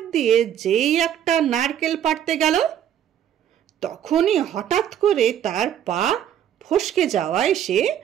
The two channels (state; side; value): quieter; left; 10.1 dB